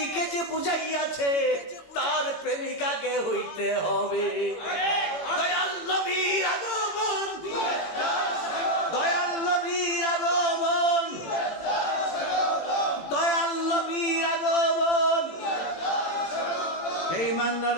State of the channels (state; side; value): late; right; 18 ms